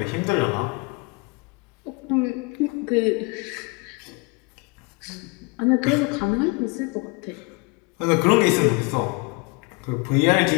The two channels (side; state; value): right; quieter; 27.7 dB